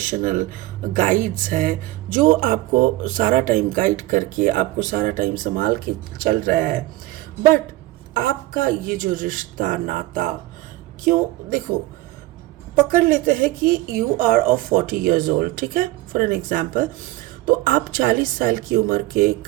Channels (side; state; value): left; quieter; 18.1 dB